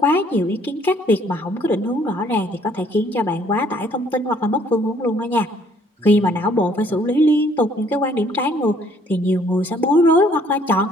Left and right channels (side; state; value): both; normal; correlation 0.62